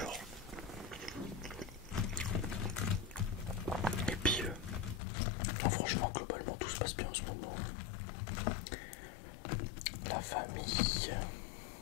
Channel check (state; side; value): drops out; right; at 5.0 s